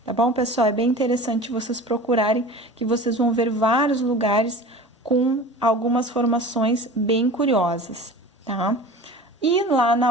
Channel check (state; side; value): normal; both; correlation 0.38